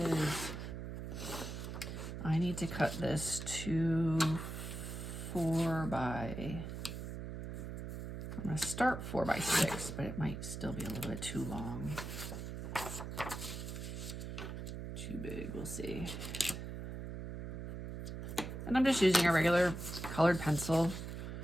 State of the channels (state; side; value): noise; right; hum, 6 dB below the sound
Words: I need to cut this to 4 by, I'm gonna start 4 by 6, but it might still be a little bit too long. Too big, we'll see. And I'm just using a regular colored pencil